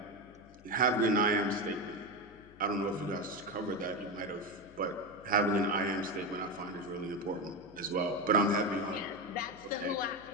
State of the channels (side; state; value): left; noise; hum, 23 dB below the sound